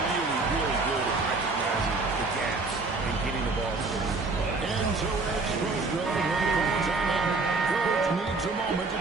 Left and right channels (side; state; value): left; quieter; 3.7 dB